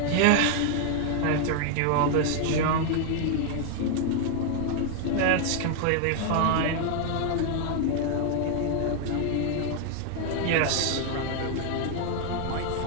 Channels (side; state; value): both; different; correlation 0.00